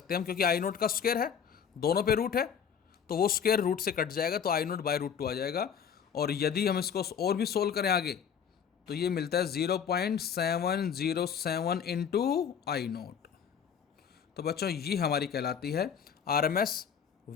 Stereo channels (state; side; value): quieter; right; 7.6 dB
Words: हैं हम, क्योंकि आई नोट का स्क्वायर है, दोनों पे रूट है, तो वो स्क्वायर रूट से कट जाएगा तो आई नोट बाय √2 आ जाएगा। और यदि हम इसको और भी सोल्व करें आगे तो ये मिलता है 0.707 इंटू आई नोट। तो बच्चों ये हमारी कहलाती है RMS